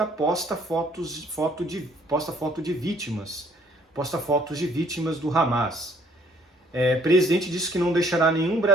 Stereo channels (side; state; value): both; normal; correlation 0.61